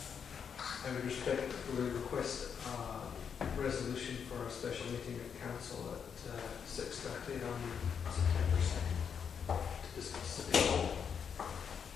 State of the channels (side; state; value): right; quieter; 7.1 dB